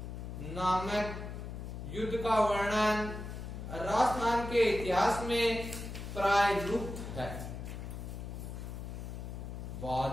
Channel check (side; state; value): left; noise; hum, 8 dB below the sound